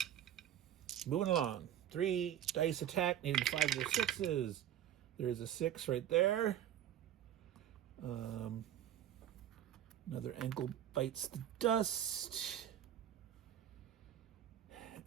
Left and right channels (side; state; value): left; quieter; 11.0 dB